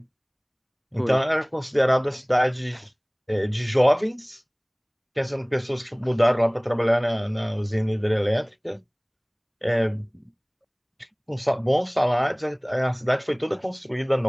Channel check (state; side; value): identical; both; correlation 1.00